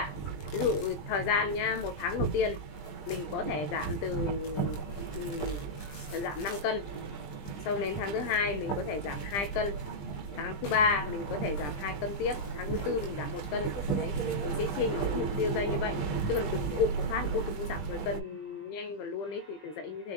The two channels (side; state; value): right; late; 20 ms